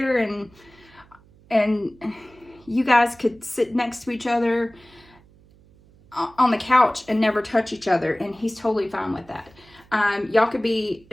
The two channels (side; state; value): right; noise; hum, 27 dB below the sound